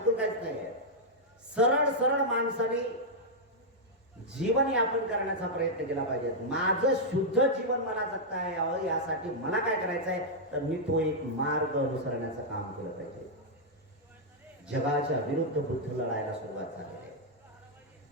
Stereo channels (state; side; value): normal; both; correlation -0.05